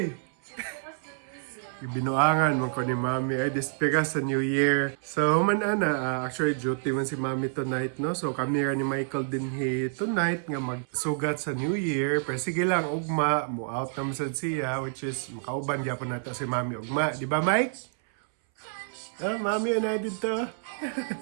Binuangan man ko ni Mami ay despega sa New Year. So human ana, actually duty man si Mami tonight no. So kami ra ni Michael dinhi tonight nga magsugat sa New Year. Pero sige lang ugma mo out na sad siya which is makauban gyapon nata si Mami ugma, di ba Mike? Ah, Mami na dito.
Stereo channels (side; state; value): left; silent; 59 dB below the other